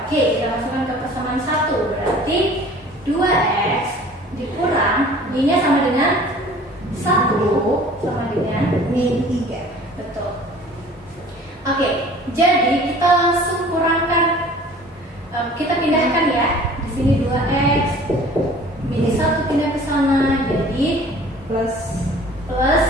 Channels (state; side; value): normal; both; correlation 0.48